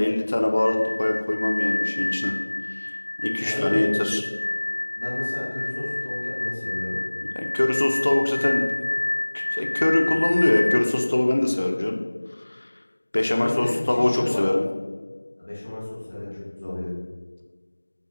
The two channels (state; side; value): inverted; both; correlation -1.00